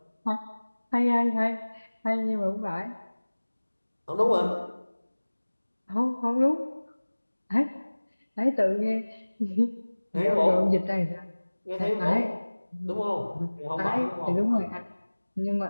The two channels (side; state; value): both; inverted; correlation -1.00